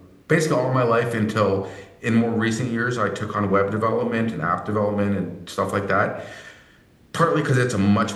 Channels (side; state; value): both; identical; correlation 1.00